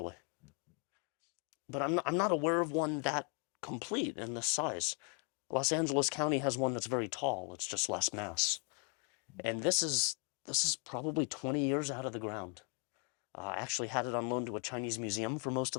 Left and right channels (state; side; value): quieter; right; 35.7 dB